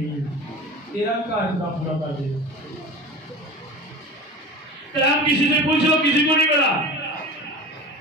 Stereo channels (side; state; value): both; normal; correlation 0.34